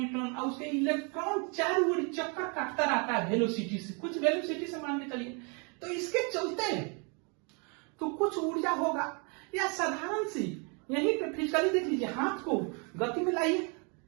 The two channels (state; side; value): quieter; left; 34.9 dB